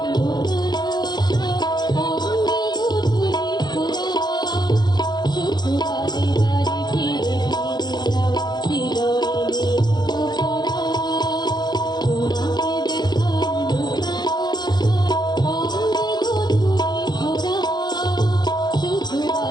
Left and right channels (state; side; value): late; right; 0.21 ms